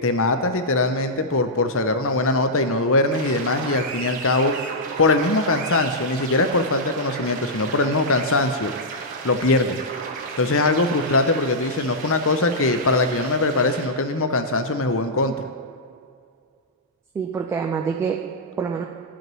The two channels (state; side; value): normal; both; correlation -0.09